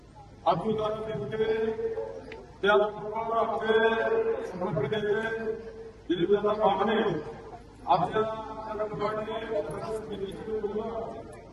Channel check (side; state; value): both; identical; correlation 1.00